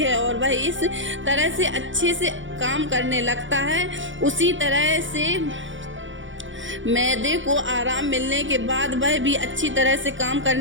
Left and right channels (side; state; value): left; late; 0.56 ms